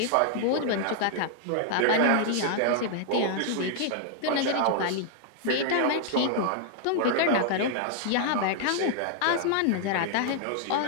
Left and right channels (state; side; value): different; both; correlation 0.00